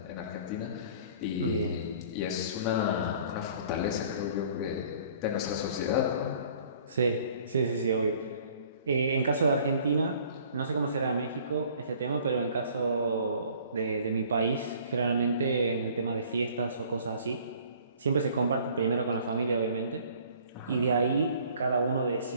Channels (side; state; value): both; inverted; correlation -0.53